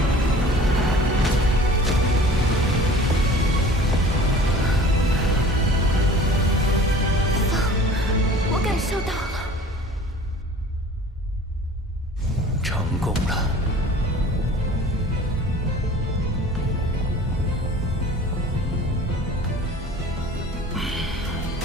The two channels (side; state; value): both; normal; correlation 0.45